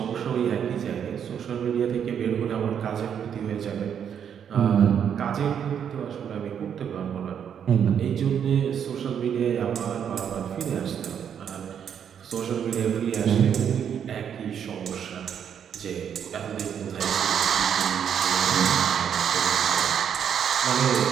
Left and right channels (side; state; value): left; quieter; 8.3 dB